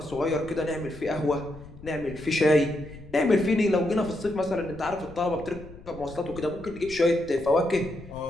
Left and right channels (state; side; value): noise; left; rumble, 18 dB below the sound